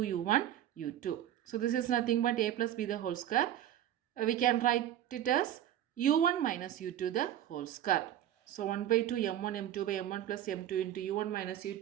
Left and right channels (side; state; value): left; quieter; 11.6 dB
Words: u1 u2. So this is nothing but a plus b the whole square. We can write it as u1 minus u2 the whole square. So 1 by 2 m1 m2 by m1 plus m2 into u1 minus